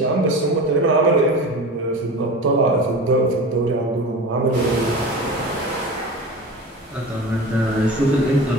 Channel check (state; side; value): normal; both; correlation 0.32